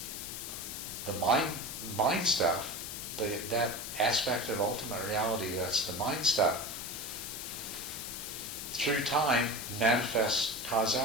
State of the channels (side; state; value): left; noise; hiss, 7 dB below the sound